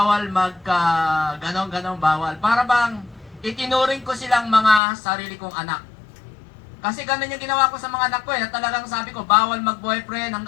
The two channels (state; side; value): drops out; right; at 4.8 s